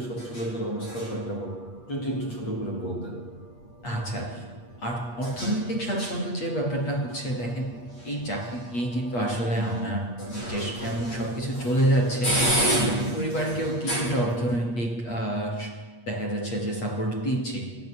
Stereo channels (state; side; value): late; right; 8.4 ms